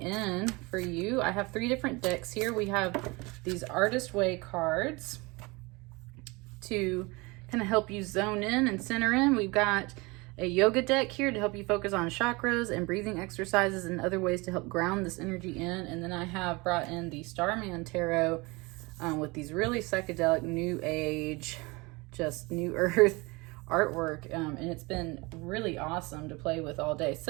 in for you? I have 3 different decks here. We have these Artist Way cards to kind of help you zone in and center in. We've got a yoga deck here to help you focus on chakras and breathing exercises and other ways to help ground this energy in. And then I have brought in the Starman Tarot with these really psychedelic, new age, just new earth artwork, and it's been really awesome to play with all day.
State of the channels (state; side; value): quieter; left; 25.2 dB